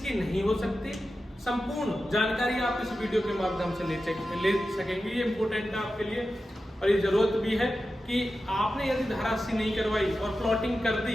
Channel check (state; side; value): normal; both; correlation 0.92